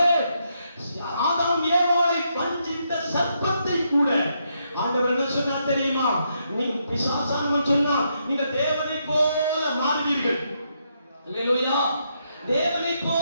ஆதாம் ஏவாளை வஞ்சித்த சர்ப்பத்தை கூட ஆண்டவர் என்ன சொன்னார் தெரியுமா? நீ பிசாசானவன் சொன்னா நீங்க தேவனை போல மாறுவீர்கள். அல்லேலூயா, தேவனை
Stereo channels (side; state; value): both; inverted; correlation -0.78